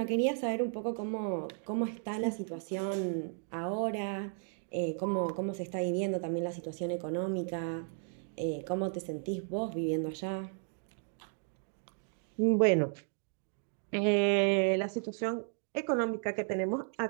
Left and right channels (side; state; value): left; silent; 55 dB below the other